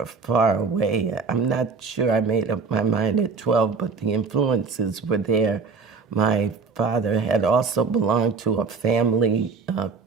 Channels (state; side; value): quieter; left; 5.0 dB